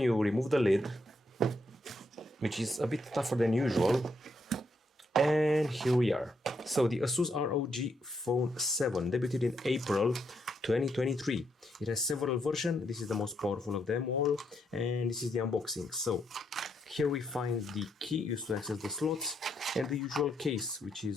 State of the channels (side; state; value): both; normal; correlation 0.77